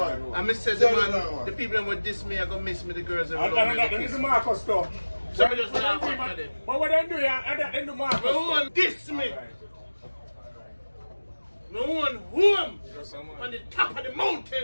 I said the people that would diss me are going to miss me, the girls. That is Marcus stuff. So I just laugh at them. But what they do, they do Marcus. No one diss me. No one home on the top of the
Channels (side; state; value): both; inverted; correlation -1.00